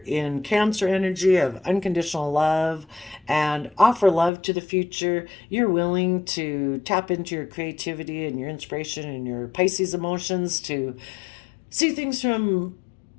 in Cancer energy of unconditional love and offer love to the future. You're willing to tap into your creativity and your inspiration and your Pisces emotions to see things from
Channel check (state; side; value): drops out; right; at 4.3 s